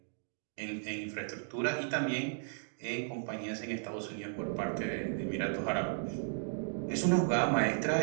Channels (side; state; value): left; silent; digital silence